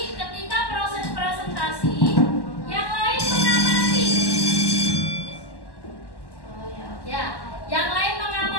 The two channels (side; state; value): right; late; 1.1 ms